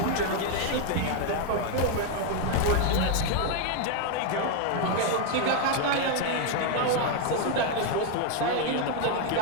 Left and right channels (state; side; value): different; both; correlation 0.01